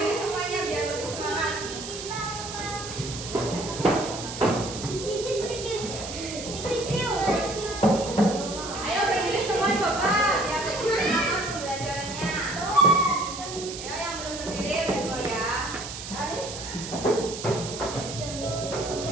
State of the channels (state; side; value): noise; right; hiss, 9 dB below the sound